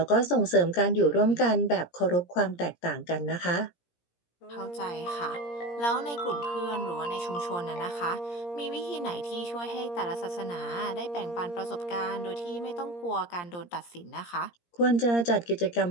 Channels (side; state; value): right; late; 17 ms